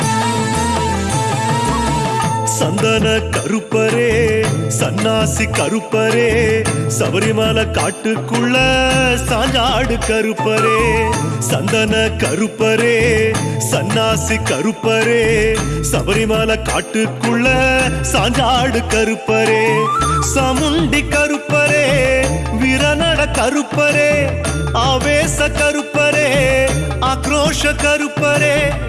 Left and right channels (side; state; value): both; identical; correlation 1.00